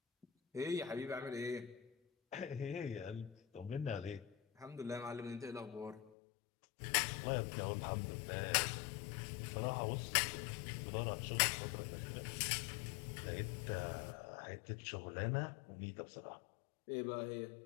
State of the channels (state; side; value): drops out; right; at 6.1 s